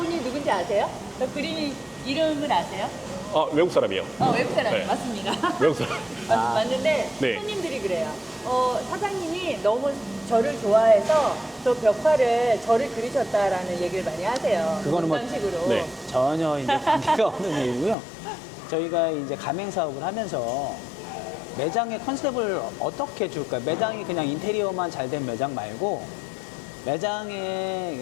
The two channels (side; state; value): right; drops out; at 17.9 s